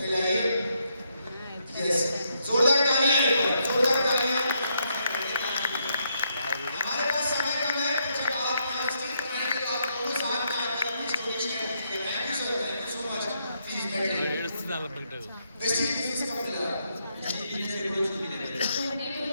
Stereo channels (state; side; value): inverted; both; correlation -0.77